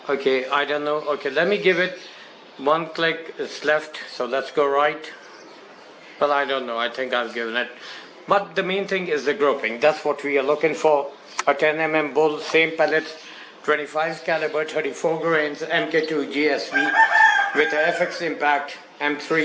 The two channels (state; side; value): identical; both; correlation 1.00